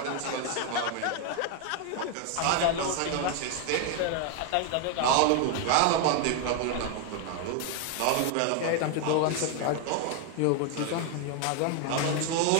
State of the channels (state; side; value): different; both; correlation 0.01